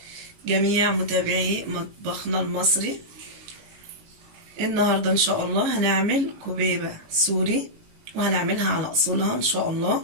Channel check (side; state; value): left; late; 19 ms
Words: جميع متابعي مطبخنا المصري. النهارده ان شاء الله هنعمل كبيبه سوري، وهنعملها على اصولها ان شاء الله،